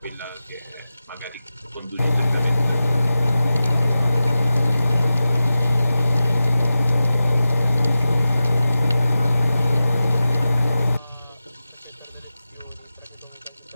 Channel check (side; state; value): both; inverted; correlation -0.94